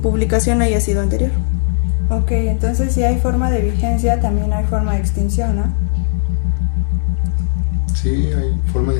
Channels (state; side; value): silent; right; digital silence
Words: publicación haya sido anterior. Ok, entonces si hay forma de vigencia, también hay forma de extinción, ¿no? Sí, hay forma de